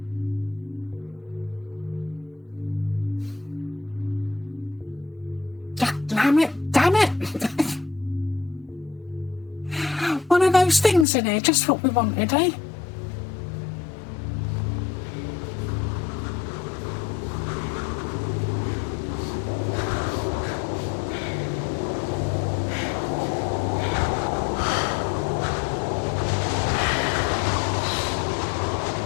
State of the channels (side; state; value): right; drops out; at 11.1 s